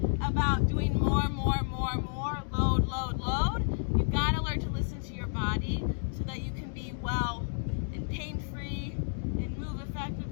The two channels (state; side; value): silent; right; digital silence